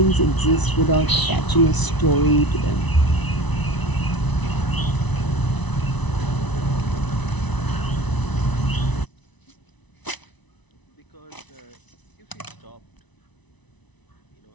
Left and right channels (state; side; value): late; right; 1.0 ms